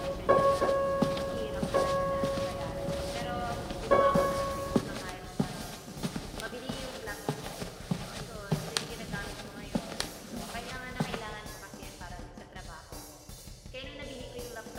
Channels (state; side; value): identical; both; correlation 1.00